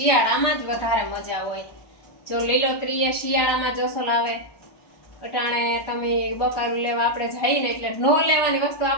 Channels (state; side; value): late; right; 1.2 ms